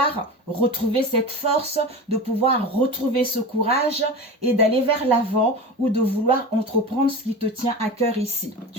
retrouver cette force, de pouvoir retrouver ce courage et d'aller vers l'avant ou de vouloir entreprendre ce qui te tient à cœur ici,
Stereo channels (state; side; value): normal; both; correlation 0.29